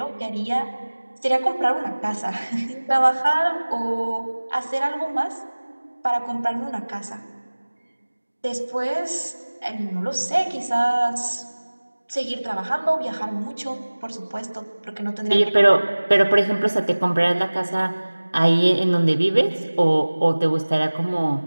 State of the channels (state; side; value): inverted; both; correlation -1.00